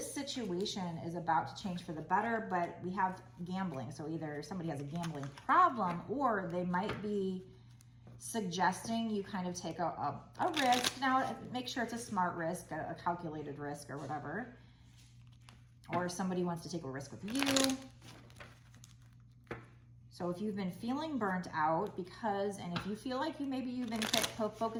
situation is about to change for the better, but we have gambling. So either somebody has a gambling problem, or they might be suggesting you kind of take a risk. Now, make sure it's a smart risk, a calculated risk or whatever. Or somebody wants to take a risk with you. So if you've been feeling burnt out and if you feel like maybe you've been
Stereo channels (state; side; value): identical; both; correlation 1.00